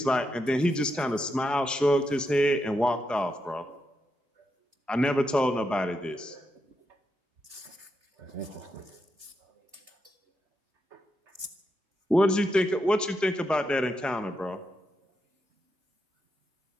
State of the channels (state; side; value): normal; both; correlation 0.84